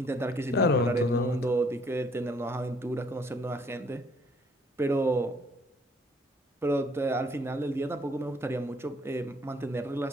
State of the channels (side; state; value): both; normal; correlation 0.62